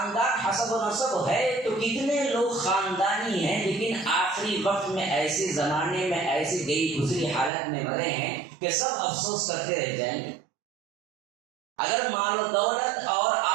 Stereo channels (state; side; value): drops out; left; at 7.5 s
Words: حسب و نسب ہے تو کتنے لوگ خاندانی ہیں لیکن آخری وقت میں ایسے زمانے میں ایسی گئی گزری حالت میں مرے ہیں کہ سب افسوس کرتے رہ جائیں گے۔ اگر مال و دولت اور